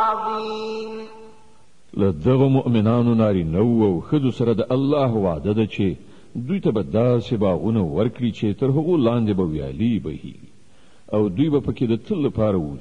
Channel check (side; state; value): both; identical; correlation 1.00